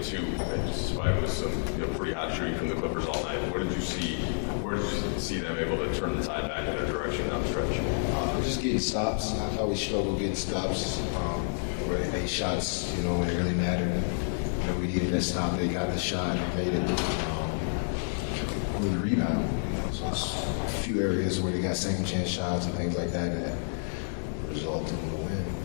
despite with some pretty hot shooting from the Clippers all night. What did you see? Where did you see them able to turn the tide back in their direction down the stretch? Just getting stops. I thought we struggled getting stops, where they made shots, when it really mattered. Whenever we needed that stop, they got the shot, they made it, or the rebound, So it's a few areas where they got second chance shots and things like that that resulted in the win.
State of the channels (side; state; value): right; silent; digital silence